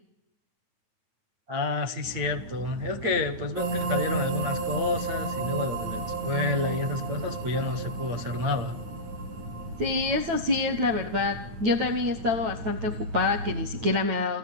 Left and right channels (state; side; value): late; left; 9.4 ms